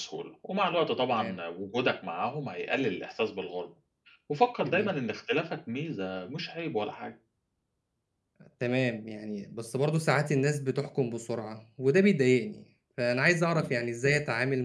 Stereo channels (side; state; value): both; identical; correlation 1.00